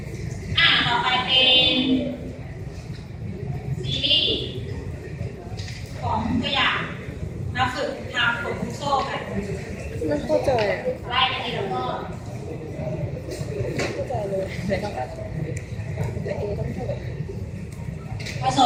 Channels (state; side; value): identical; both; correlation 1.00